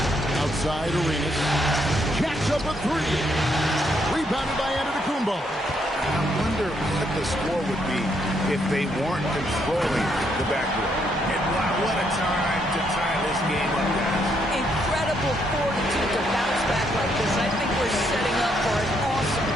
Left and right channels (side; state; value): both; normal; correlation 0.74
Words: Outside Arenas. Jacks up a 3. Rebounded by Antetokounmpo. I wonder what the score would be if they weren't controlling the backcourt. And wow, what a time to tie this game up, guys. Incredible fortitude to bounce back like this. I think we're setting up for an awesome